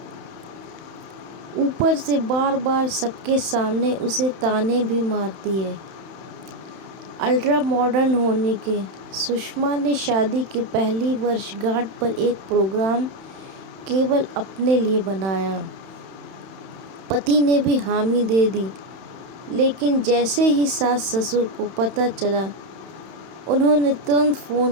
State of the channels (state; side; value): late; left; 31 ms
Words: اوپر سے بار بار سب کے سامنے اسے طعنے بھی مارتی ہے۔ الٹرا ماڈرن ہونے کے سشما نے شادی کی پہلی برس گانٹ پر ایک پروگرام کیول اپنے لیے بنایا۔ پتی نے بھی حامی دے دی، لیکن جیسے ہی ساس سسر کو پتہ چلا، انہوں نے ترنت